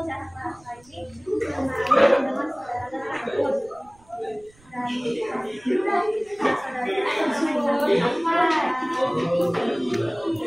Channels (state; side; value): noise; right; rumble, 29 dB below the sound